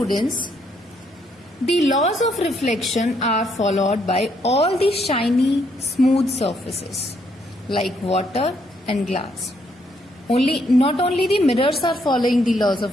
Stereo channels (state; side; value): normal; both; correlation 0.72